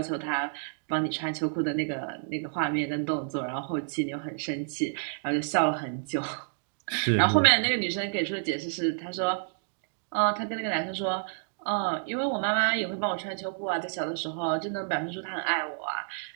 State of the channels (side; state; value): left; silent; digital silence